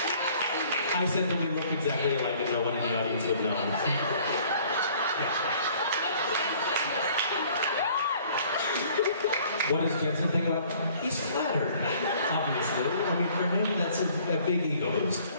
I said that we look exactly alike and no one in the audience would know. What does Jensen think about that? He's flattered, obviously. I mean, for him, that's a big ego boost.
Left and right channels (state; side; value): inverted; both; correlation -0.56